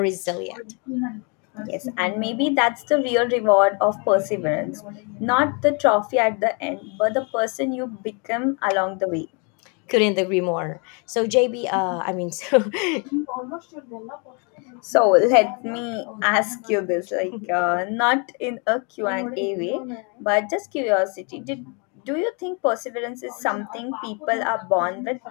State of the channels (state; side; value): quieter; right; 34.5 dB